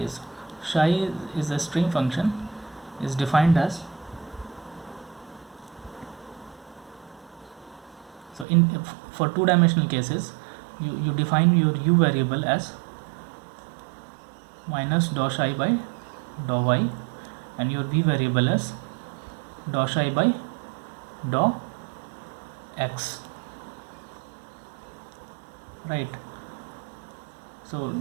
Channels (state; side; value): drops out; left; at 8.5 s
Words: Psi is a string function, is defined as, so for two-dimensional cases you define your u variable as minus dou psi by dou y, and your v variable as dou psi by dou x, right? So